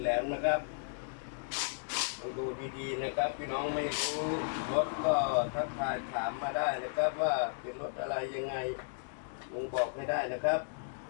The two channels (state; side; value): silent; right; digital silence